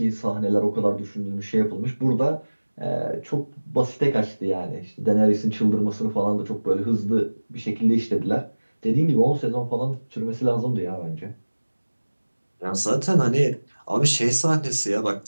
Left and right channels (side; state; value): both; inverted; correlation -1.00